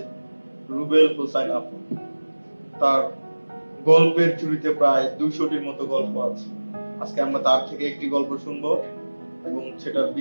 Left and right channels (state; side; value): inverted; both; correlation -1.00